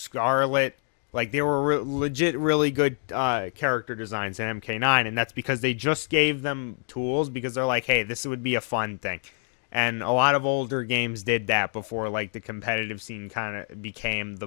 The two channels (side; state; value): right; silent; 57 dB below the other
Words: Like, they were legit really good character designs in MK9, and that's because they just gave them tools because they're like, hey, this would be a fun thing. And a lot of older games did that before, like, the competitive scene kind of became the